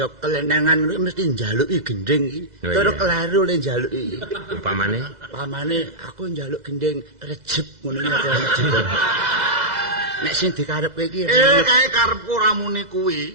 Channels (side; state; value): left; late; 2.0 ms